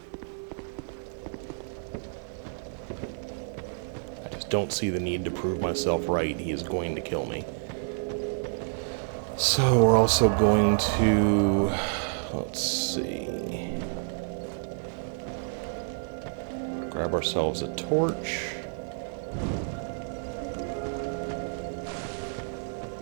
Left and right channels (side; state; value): left; silent; 58 dB below the other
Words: Don't see the need to prove myself right. He is going to kill me. So we're also going to, let's see, grab ourselves a torch.